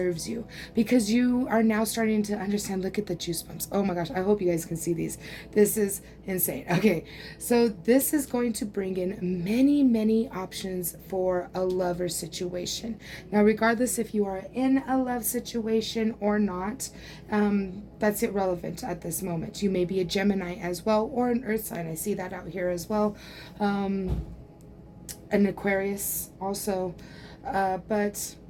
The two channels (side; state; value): both; identical; correlation 1.00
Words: you, because you are now starting to understand. Look at the juice bumps. Oh my gosh, I hope you guys can see these. This is insane. Okay, so this is going to bring in many options for a lover situation. Now, regardless if you are in a love situation or not, that's irrelevant at this moment. You may be a Gemini as well, or an earth sign. I see that out here as well. An Aquarius also. But